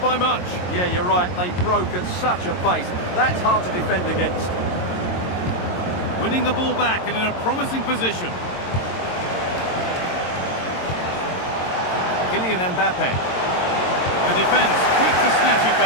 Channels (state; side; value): late; right; 22 ms